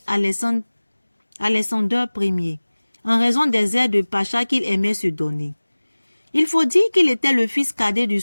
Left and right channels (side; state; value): both; inverted; correlation -1.00